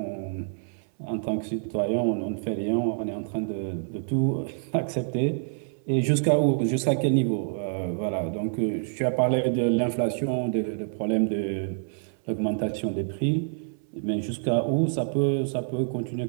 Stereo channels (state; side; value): silent; left; 60 dB below the other